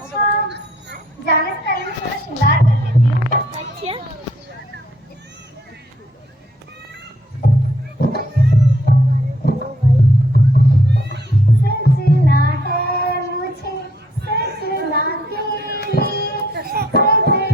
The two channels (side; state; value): both; normal; correlation 0.67